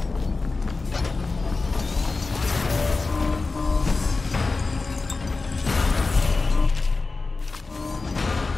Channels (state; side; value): quieter; right; 3.8 dB